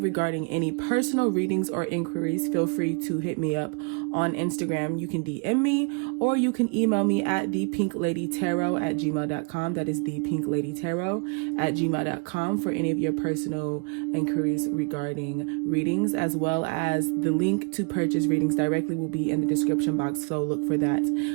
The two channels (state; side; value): quieter; left; 34.6 dB